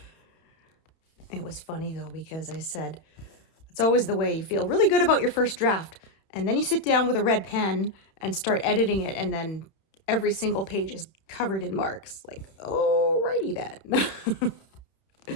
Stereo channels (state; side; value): late; right; 31 ms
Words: It was funny though, because I said, it's always the way. You feel really good about your first draft, and then you sit down with a red pen and start editing it, and then every single page is covered in marks. Like, alrighty then.